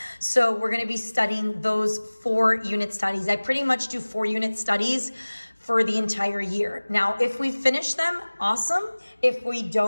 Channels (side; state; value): both; inverted; correlation -1.00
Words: So we're going to be studying those 4 unit studies. I pretty much do 4 unit studies for the entire year. Now, if we finish them, awesome. If we